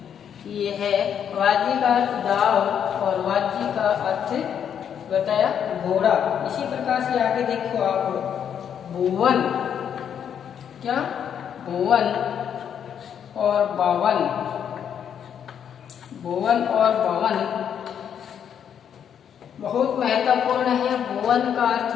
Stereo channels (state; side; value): quieter; right; 8.5 dB